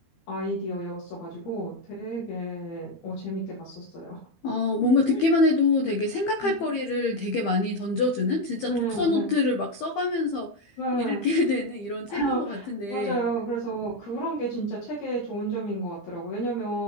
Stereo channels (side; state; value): right; late; 12 ms